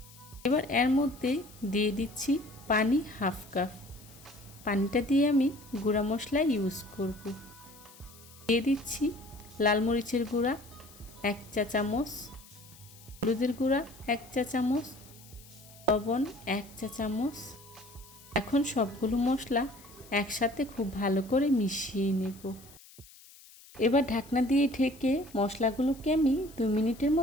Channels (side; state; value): left; noise; hiss, 22 dB below the sound